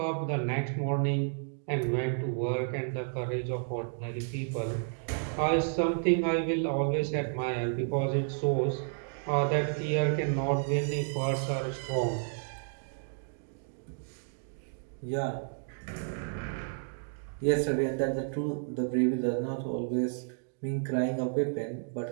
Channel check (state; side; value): silent; left; digital silence